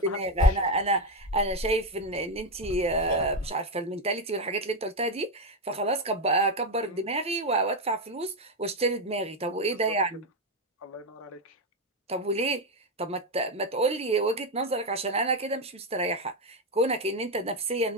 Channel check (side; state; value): both; normal; correlation 0.07